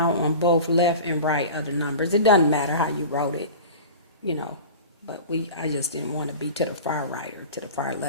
on both left and right of the numbers. It doesn't matter how you wrote it, you know, but I just didn't want to be to the far right or to the far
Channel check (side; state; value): both; inverted; correlation -0.36